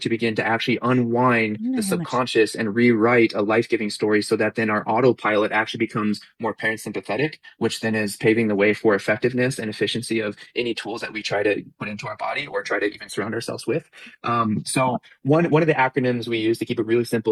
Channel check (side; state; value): both; identical; correlation 1.00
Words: to begin to actually unwind I don't the know how much. subconscious and rewrite a life-giving story, so that then our autopilot actually becomes more parasympathetic, which then is paving the way for effectiveness and efficiency of any tools that we try to put into our body or try to even surround ourselves with. So one of the acronyms we use to keep it really